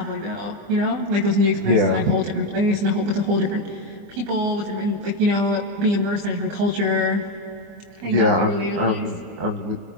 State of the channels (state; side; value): late; left; 25 ms